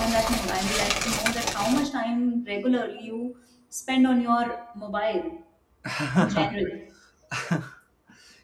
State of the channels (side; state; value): both; identical; correlation 1.00